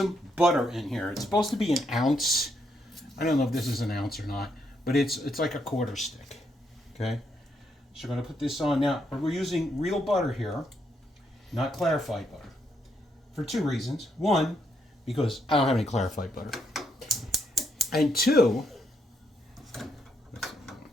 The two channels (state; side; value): normal; both; correlation 0.77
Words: butter in here. It's supposed to be an ounce. I don't know if this is an ounce or not, but it's like a quarter stick. Okay? So we're going to put this on now. We're using real butter here, not clarified butter, for 2 reasons. 1, because I don't have any clarified butter. And 2,